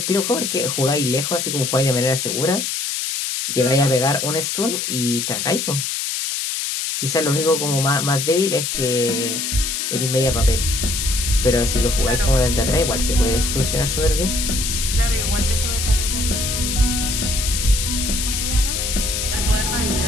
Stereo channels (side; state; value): left; noise; hiss, 2 dB below the sound